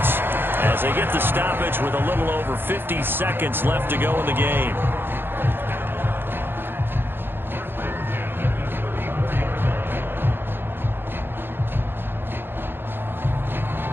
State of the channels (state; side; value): late; left; 0.10 ms